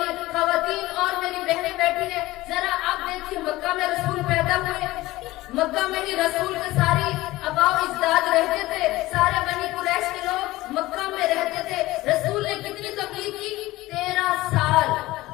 خواتین اور میری بہنیں بیٹھی ہیں, ذرا آپ دیکھیے مکہ میں رسول پیدا ہوئے, مکہ میں ہی رسول کے ساری آباء و اجداد رہتے تھے, سارے بنی قریش کے لوگ مکہ میں رہتے تھے. رسول نے کتنی تبلیغ کی؟ 13 سال.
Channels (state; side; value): quieter; right; 18.2 dB